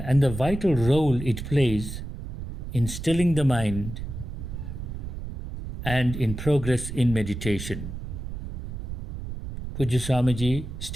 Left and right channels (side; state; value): right; noise; rumble, 8 dB below the sound